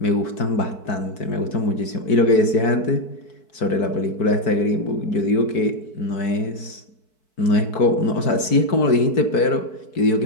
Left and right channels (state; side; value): late; right; 4.6 ms